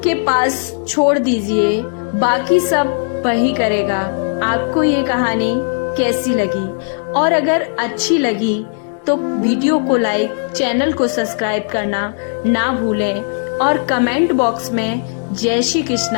के पास छोड़ दीजिए, बाकी सब वही करेगा। आपको ये कहानी कैसी लगी? और अगर अच्छी लगी तो वीडियो को लाइक, चैनल को सब्सक्राइब करना ना भूलें और कमेंट बॉक्स में जय श्री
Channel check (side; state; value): right; silent; digital silence